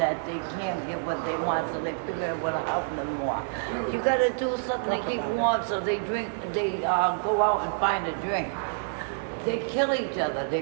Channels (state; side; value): silent; left; digital silence